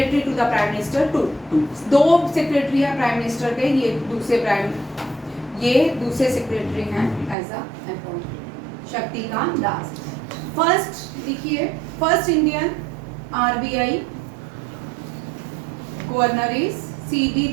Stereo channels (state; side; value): drops out; left; at 7.4 s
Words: to the prime minister. दो सेक्रेटरी है प्राइम मिनिस्टर के, ये दूसरे सेक्रेटरी हैं as a appoint. Shaktikanta Das first, देखिए first Indian RBI governor is CD